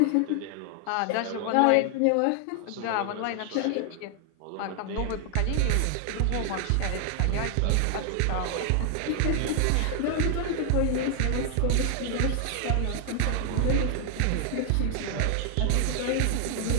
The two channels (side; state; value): both; different; correlation 0.00